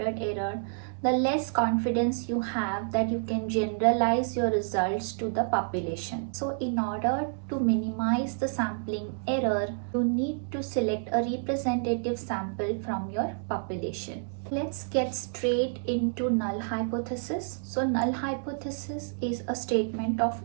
error, the less confidence you have that you can generalize your results to the population. So in order to minimize the sampling error, you need to select a representative sample from your population. Let's get straight into null hypothesis. So null hypothesis is a statement of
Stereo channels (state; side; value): silent; left; digital silence